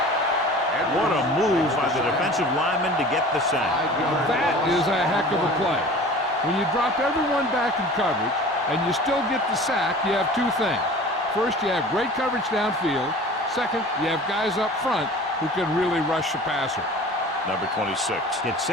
What a move by the defensive lineman to get the sack. That is a heck of a play. When you drop everyone back in coverage and you still get the sack, you have 2 things. First, you have great coverage downfield. Second, you have guys up front who can really rush the passer. Number 26 gets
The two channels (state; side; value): normal; both; correlation 0.42